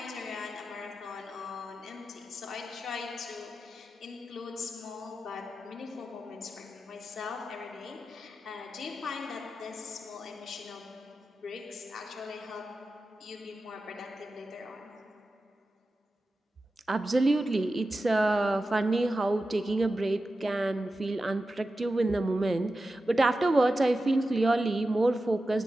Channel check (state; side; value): normal; both; correlation 0.92